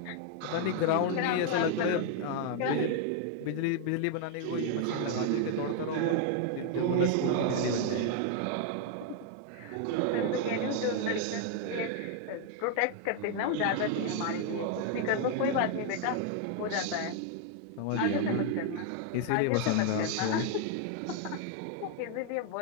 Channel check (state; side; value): different; both; correlation 0.00